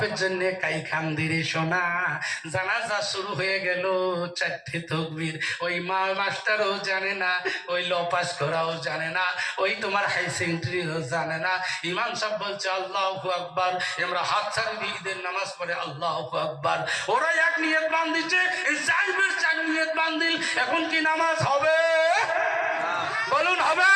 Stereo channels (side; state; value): both; identical; correlation 1.00